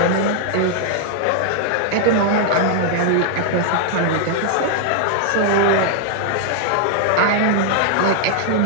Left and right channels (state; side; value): different; both; correlation 0.00